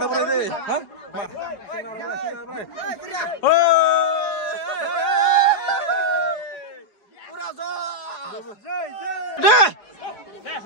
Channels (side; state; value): right; late; 4.8 ms